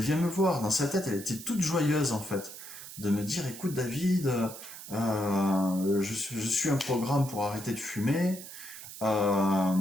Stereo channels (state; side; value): noise; right; hiss, 13 dB below the sound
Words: me voir, dans sa tête, elle était toute joyeuse en fait, de me dire, écoute David, je suis un programme pour arrêter de fumer,